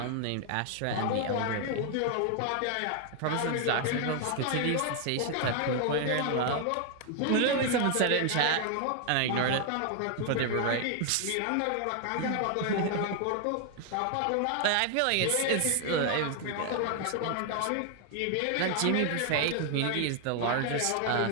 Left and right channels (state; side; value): different; both; correlation 0.00